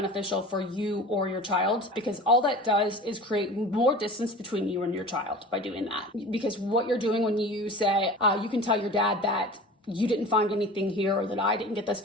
for you or your child, because all that does is create more distance between you and your child by doing that. Because what you're doing when you say, you can tell your dad that you didn't find anything here or that I didn't get this,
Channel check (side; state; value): both; normal; correlation 0.37